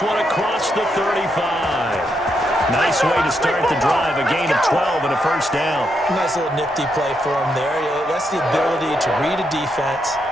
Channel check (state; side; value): normal; both; correlation 0.80